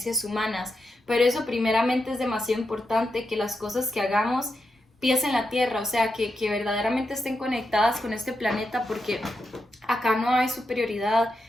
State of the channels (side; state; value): both; normal; correlation 0.86